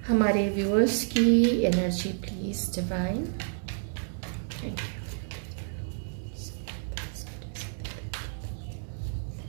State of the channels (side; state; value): left; silent; 58 dB below the other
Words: हमारे व्यूअर्स की energy please divine. Thank you.